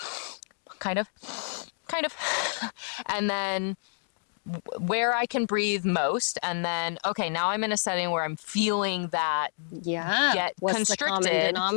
kind of. And then where I can breathe most. And then, okay, now I'm in a setting where I'm feeling that get What's constricted. the common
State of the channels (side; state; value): right; silent; digital silence